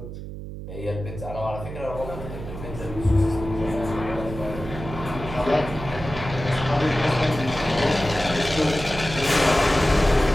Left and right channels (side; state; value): right; noise; hum, 10 dB below the sound